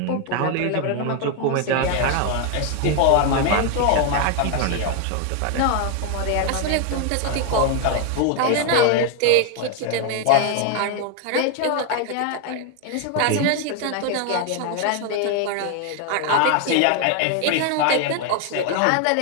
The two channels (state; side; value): different; both; correlation 0.01